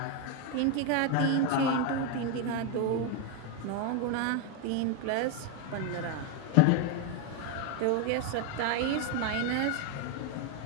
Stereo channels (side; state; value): both; different; correlation 0.02